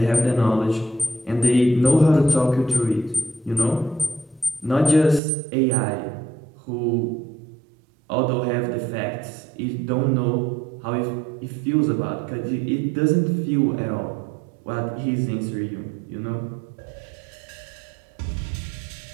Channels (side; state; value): left; drops out; at 5.2 s